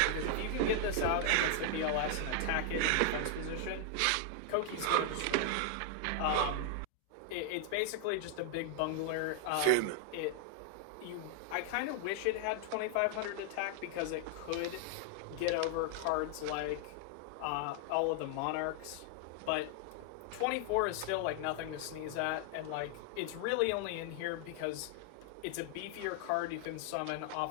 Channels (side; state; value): both; different; correlation 0.00